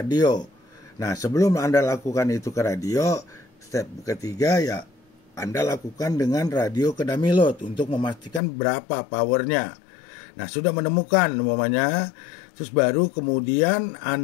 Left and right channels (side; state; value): right; drops out; at 8.4 s